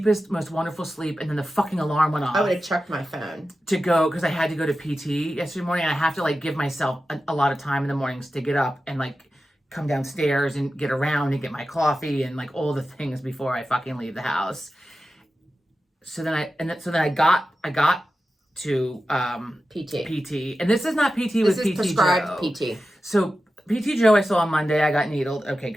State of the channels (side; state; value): both; normal; correlation 0.93